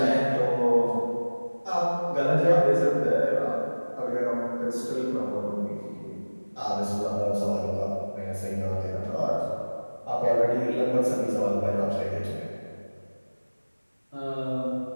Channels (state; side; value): inverted; both; correlation -1.00